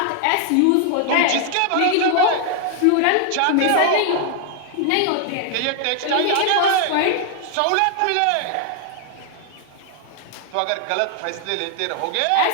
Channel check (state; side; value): different; both; correlation 0.00